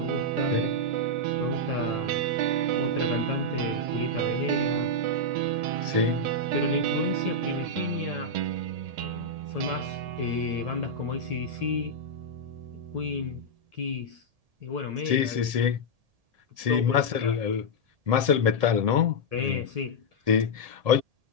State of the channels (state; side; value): late; left; 1.7 ms